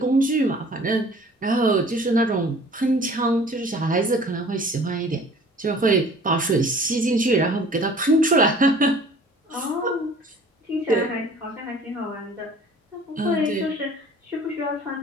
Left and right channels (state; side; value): normal; both; correlation 0.49